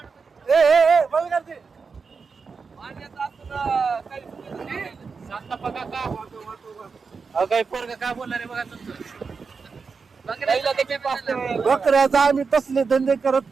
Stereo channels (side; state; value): left; quieter; 5.1 dB